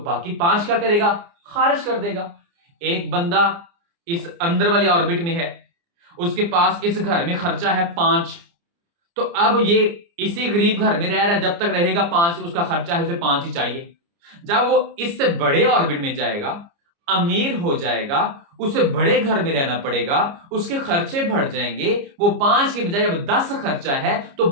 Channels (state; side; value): late; left; 29 ms